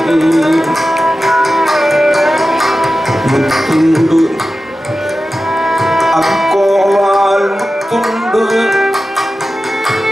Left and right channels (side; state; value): both; normal; correlation 0.94